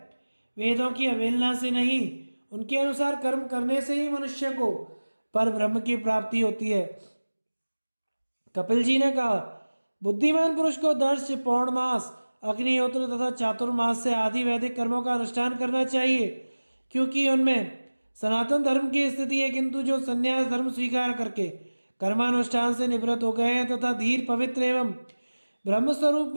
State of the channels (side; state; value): both; inverted; correlation -1.00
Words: वेदों की अवहेलना से नहीं, उनके अनुसार कर्म करने से ही मनुष्य को पर ब्रह्म की प्राप्ति होती है। कपिल जी ने कहा, बुद्धिमान पुरुष को दर्श, पौर्णमास, अग्निहोत्र तथा चातुर्मास से आदि वैदिक कर्मों का अनुष्ठान करना चाहिए, क्योंकि उनमें सनातन धर्म की स्थिति है। किंतु जो संन्यास धर्म स्वीकार करके कर्मानुष्ठान से निवृत्त हो गए हैं तथा धीर, पवित्र एवं ब्रह्म स्वरूप